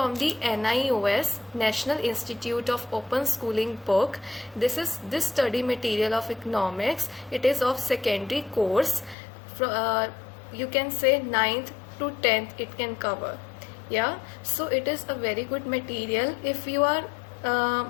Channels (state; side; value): drops out; right; at 9.2 s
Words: the NIOS National Institute of Open Schooling book. This study material of economics. It is of secondary course. You can say 9th to 10th it can cover. Yeah, so it is a very good material if you are